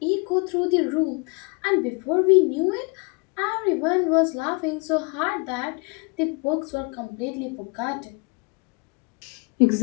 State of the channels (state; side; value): quieter; right; 32.2 dB